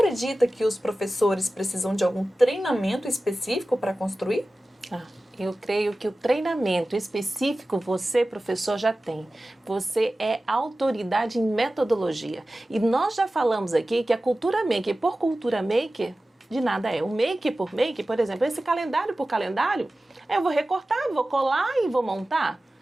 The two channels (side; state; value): both; normal; correlation 0.96